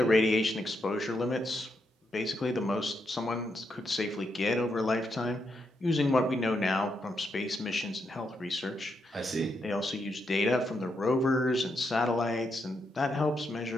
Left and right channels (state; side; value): normal; both; correlation 0.81